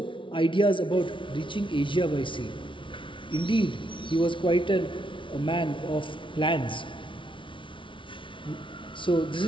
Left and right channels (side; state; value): right; late; 0.25 ms